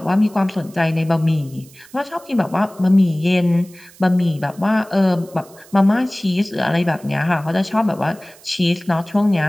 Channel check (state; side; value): noise; right; hiss, 24 dB below the sound